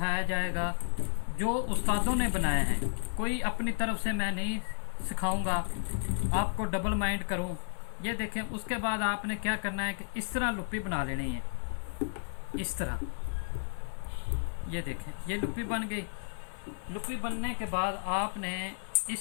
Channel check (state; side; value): silent; right; 56 dB below the other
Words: जाएगा जो उस्तादों ने बनाए हैं। कोई अपनी तरफ से मैं नहीं सिखाऊंगा, आपको डबल माइंड करूं। ये देखें, उसके बाद आपने क्या करना है कि इस तरह लुप्पी बना लेनी है, इस तरह। ये देखें, ये लुप्पी बन गई। लुप्पी बनने के बाद आपने